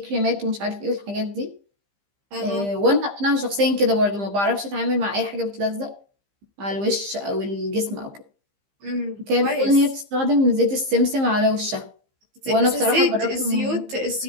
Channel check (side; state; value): left; late; 15 ms